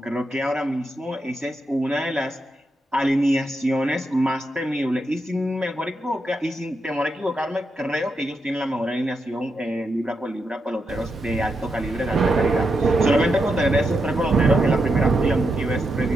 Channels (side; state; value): both; normal; correlation 0.84